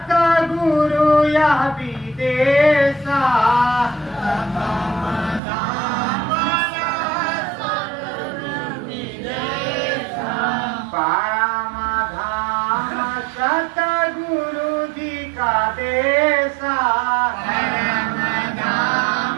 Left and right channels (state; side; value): drops out; left; at 5.4 s